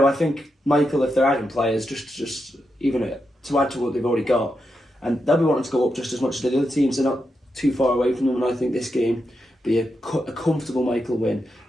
I think Michael, if they're adding players, just even to add to what they've already got, and they'll be wanting to go up just as much as the other teams. They're not too far away from them, and I think this game be a comfortable Michael win.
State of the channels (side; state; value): both; normal; correlation 0.86